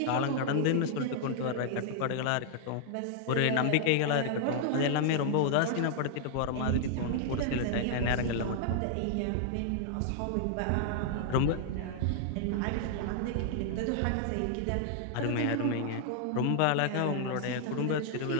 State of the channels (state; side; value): different; both; correlation 0.00